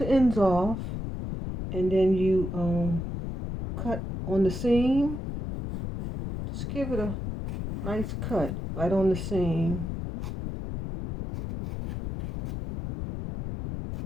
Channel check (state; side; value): noise; left; rumble, 5 dB below the sound